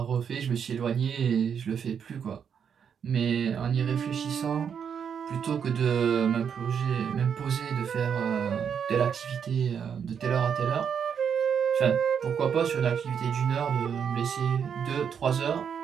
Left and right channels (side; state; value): left; quieter; 7.5 dB